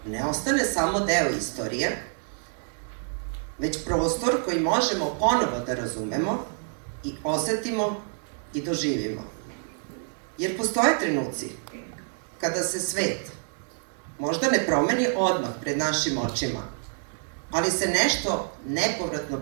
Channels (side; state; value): left; silent; 60 dB below the other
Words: ne ostane samo deo istorije, već prostor koji možemo ponovo da razumemo i osetimo i doživimo. Jer postoje trenuci kada se svet možda ne promeni odmah pred našim očima, ali se nešto nepovratno